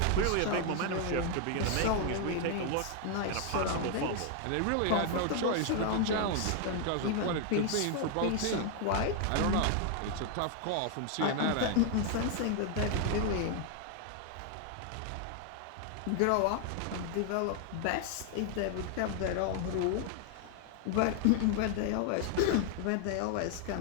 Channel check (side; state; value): both; different; correlation 0.00